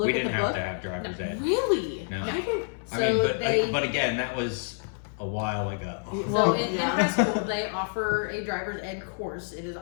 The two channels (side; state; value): right; silent; 59 dB below the other